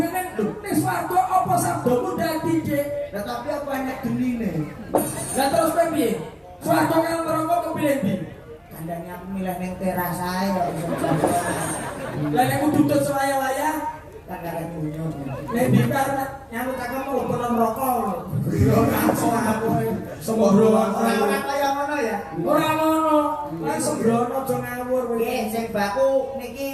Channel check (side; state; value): both; identical; correlation 1.00